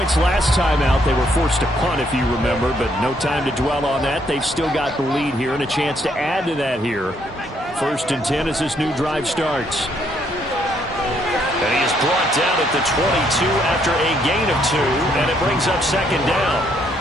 last time out. They were forced to punt, if you remember, but no time to dwell on that. They've still got the lead here and a chance to add to that here. 1st and 10 as this new drive starts. And he is brought down at the 22 after a gain of 2, and it brings up 2nd down.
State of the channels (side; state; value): both; normal; correlation 0.71